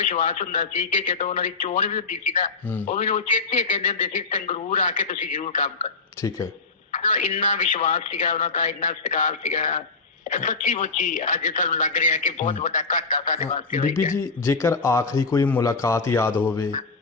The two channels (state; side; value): quieter; right; 4.2 dB